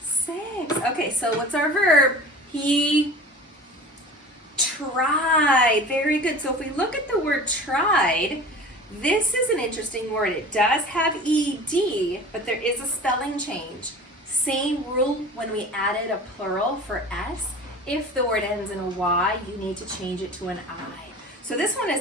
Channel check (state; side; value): normal; both; correlation 0.39